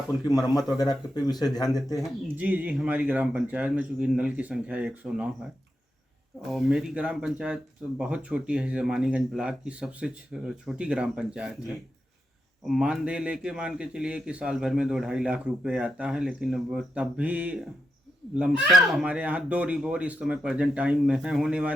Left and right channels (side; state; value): both; normal; correlation 0.86